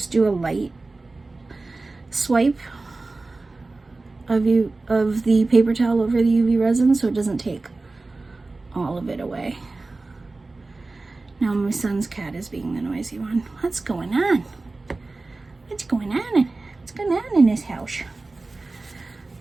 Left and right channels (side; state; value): left; quieter; 3.4 dB